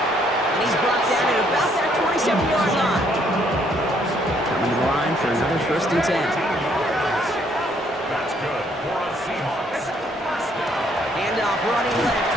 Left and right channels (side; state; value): both; normal; correlation 0.67